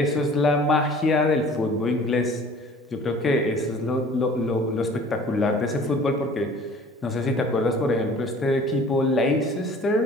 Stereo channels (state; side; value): normal; both; correlation 0.49